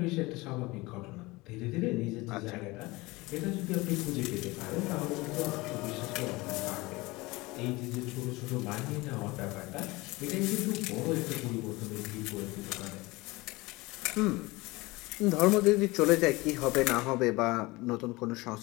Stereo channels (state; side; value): quieter; right; 22.1 dB